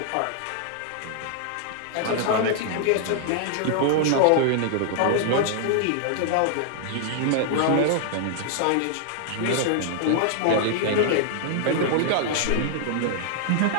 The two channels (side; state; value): both; different; correlation 0.00